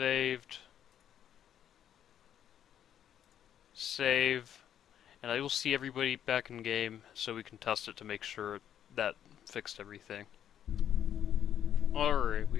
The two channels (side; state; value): right; quieter; 10.0 dB